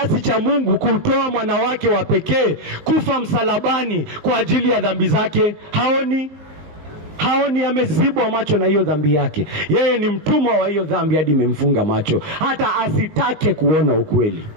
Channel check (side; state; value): left; late; 19 ms